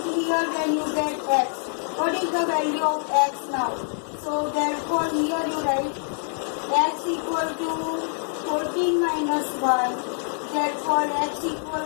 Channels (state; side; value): silent; right; 62 dB below the other